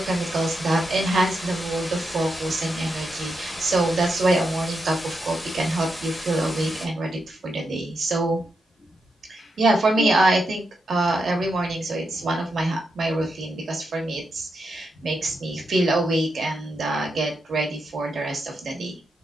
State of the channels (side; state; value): both; normal; correlation 0.85